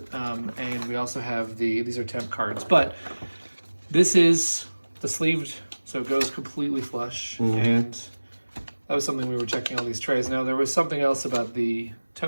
and we also have these are temp cards. But this is the sleeved, so it goes completely flush, and that was something we were checking all these trays. Now, there was something else about the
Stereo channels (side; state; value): both; inverted; correlation -1.00